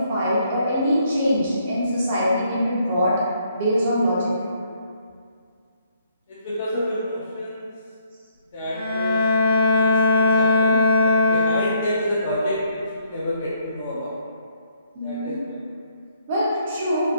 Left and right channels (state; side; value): inverted; both; correlation -0.70